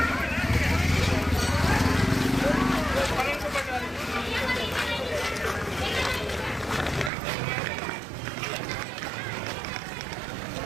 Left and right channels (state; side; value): drops out; left; at 7.1 s